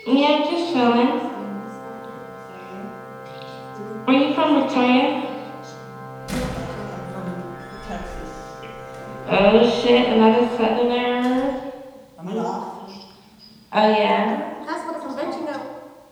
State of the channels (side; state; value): both; identical; correlation 1.00